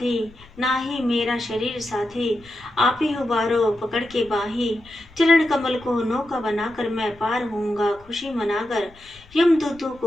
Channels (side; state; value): left; noise; rumble, 25 dB below the sound